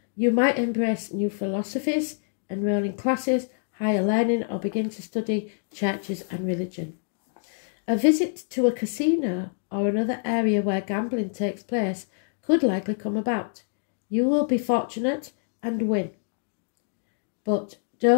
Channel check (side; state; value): right; silent; digital silence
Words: You might embrace new philosophies, enroll in classes, higher learning, or begin to study churches and religion. A visit to a casino or another area where gambling takes place could likely come about. You will be fortunate and win. But